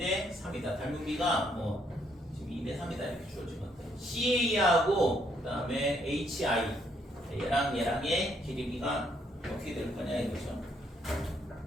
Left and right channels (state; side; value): normal; both; correlation 0.71